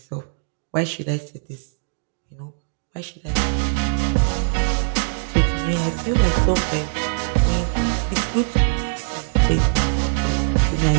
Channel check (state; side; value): silent; left; digital silence